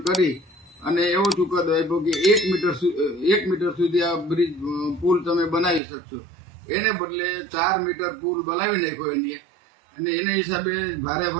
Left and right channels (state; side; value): drops out; left; at 5.8 s